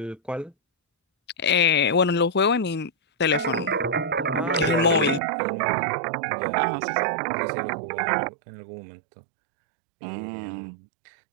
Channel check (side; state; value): left; drops out; at 5.2 s